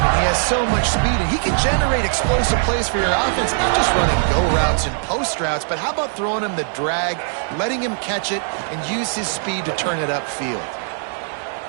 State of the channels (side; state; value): left; silent; 66 dB below the other